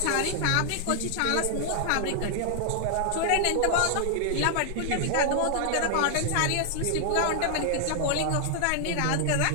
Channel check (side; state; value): both; different; correlation 0.00